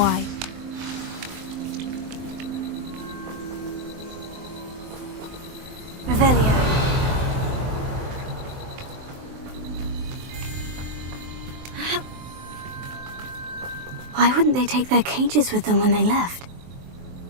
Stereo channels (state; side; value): late; left; 23 ms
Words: Revelio. Why wouldn't they take their cages with them when they left?